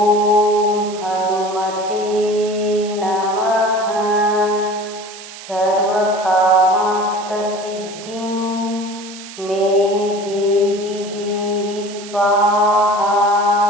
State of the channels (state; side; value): noise; right; hiss, 15 dB below the sound